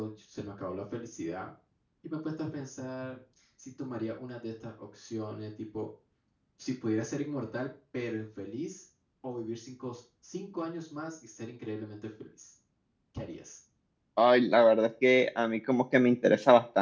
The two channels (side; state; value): both; identical; correlation 1.00